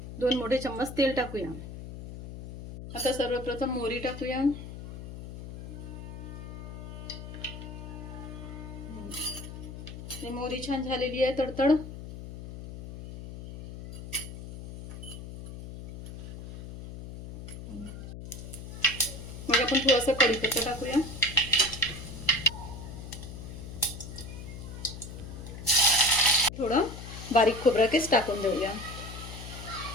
2 मोठे चम्मच तेल टाकूया। आता सर्वप्रथम मोहरी टाकूया. मोहरी छान झालेली आहे तडतड. मग आपण थोडासा कढीपत्ता टाकूया. थोडं बारीक खोबरा केस टाकून देऊया.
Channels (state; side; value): noise; left; hum, 11 dB below the sound